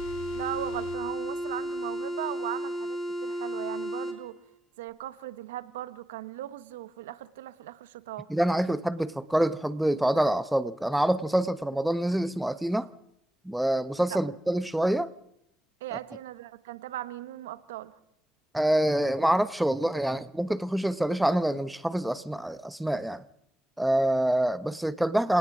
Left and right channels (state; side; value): normal; both; correlation 0.91